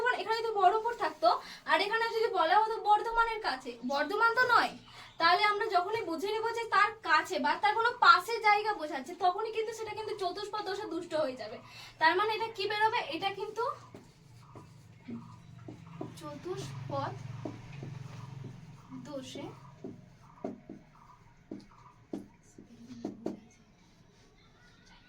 এখানে যদি বহরমপুর থাকতো আর এখানে যদি বলা হতো বর্ধমানের কাছে, বর্ধমান তো নয়, তাহলে আমরা যখনই বুঝে নেবো যে তার কাছে বা তার কোনো পাশের জায়গা বোঝাচ্ছে, তখনই কিন্তু সেটা কিন্তু চতুষ্পদ দোষে দুষ্ট হয়ে যাবে। তার মানে এটা কি বেরোবে, এটা কিন্তু চতুষ্পদ দোষে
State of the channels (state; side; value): identical; both; correlation 1.00